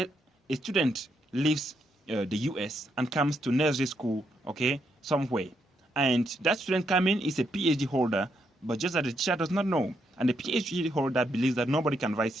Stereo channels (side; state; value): both; normal; correlation 0.78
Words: a student leaves the US and comes to nursery school, okay, somewhere. And that student coming is a PhD holder, but just that the teacher does not know. And the PhD holder believes that nobody can